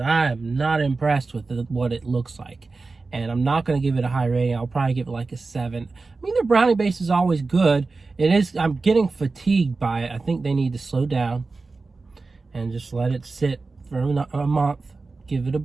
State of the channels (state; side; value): quieter; left; 3.9 dB